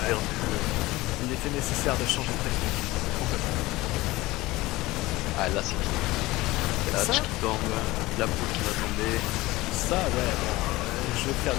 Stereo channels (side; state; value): right; quieter; 19.4 dB